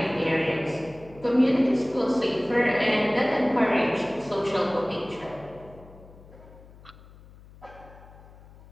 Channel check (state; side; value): noise; left; hum, 22 dB below the sound